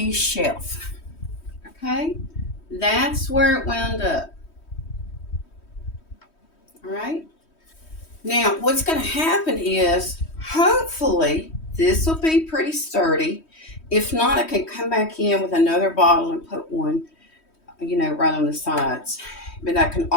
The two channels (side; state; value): right; late; 3.1 ms